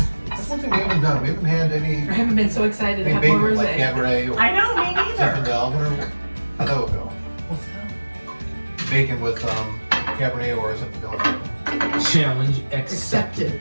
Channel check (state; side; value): inverted; both; correlation -1.00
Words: That's one thing we haven't done. We haven't had any I haven't been so excited to have bacon more like rosé. Cabaret or I know, me neither. Zinfandel. How'd that would go? What's that? Bacon with Cabernet or Zinfandel. Challenge accepted.